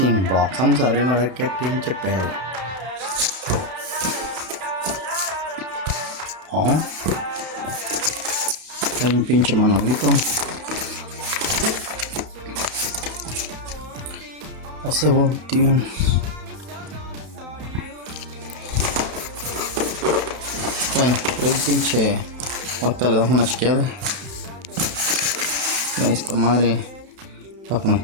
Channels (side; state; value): left; late; 31 ms